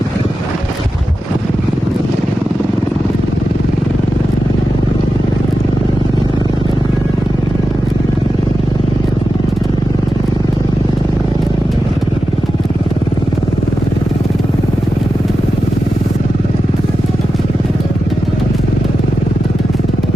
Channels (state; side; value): normal; both; correlation 0.91